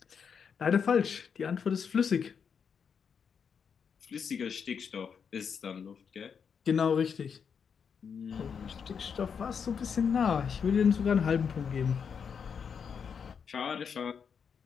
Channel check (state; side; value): quieter; right; 6.7 dB